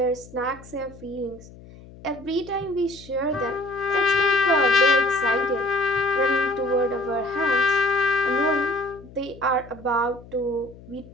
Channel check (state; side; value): noise; left; hum, 20 dB below the sound